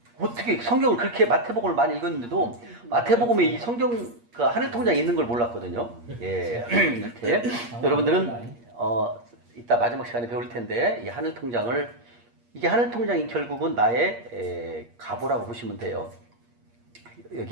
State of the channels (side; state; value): left; late; 8.5 ms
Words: 어떻게 성경을 그렇게 마태복음을 많이 읽었는데도 마태복음에 이 성경 그 하늘통장이 있는 걸 몰랐거든요. 예, 이렇게 여러분들은 이따 마지막 시간에 배울 텐데 이 하늘통장을 이게 하늘통장이 결국은 나의 가보라고 보시면 돼요.